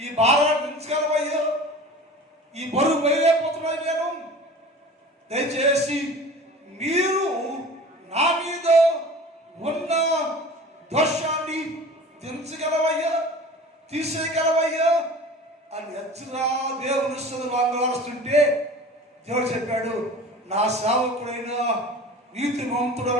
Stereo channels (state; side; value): normal; both; correlation 0.40